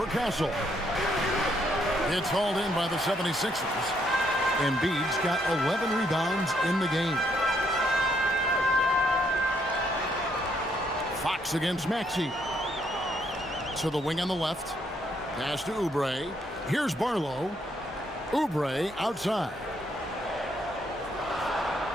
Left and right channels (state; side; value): normal; both; correlation 0.72